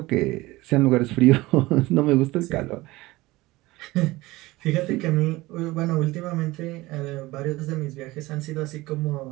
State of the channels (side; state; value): left; quieter; 19.7 dB